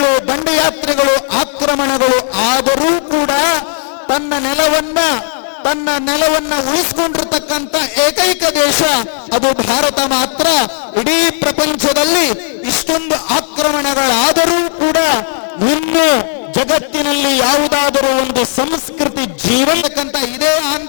ದಂಡಯಾತ್ರೆಗಳು, ಆಕ್ರಮಣಗಳು ಆದರೂ ಕೂಡ ತನ್ನ ನೆಲವನ್ನ ಉಳಿಸಿಕೊಂಡಿರ್ತಕ್ಕಂಥ ಏಕೈಕ ದೇಶ ಅದು ಭಾರತ ಮಾತ್ರ. ಇಡೀ ಪ್ರಪಂಚದಲ್ಲಿ ಇಷ್ಟೊಂದು ಆಕ್ರಮಣಗಳಾದರೂ ಕೂಡ ಇನ್ನು ಜಗತ್ತಿನಲ್ಲಿ ಯಾವುದಾದರೂ ಒಂದು ಸಂಸ್ಕೃತಿ ಜೀವಂತಕ್ಕಂಥ ಇದೇ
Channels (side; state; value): right; silent; digital silence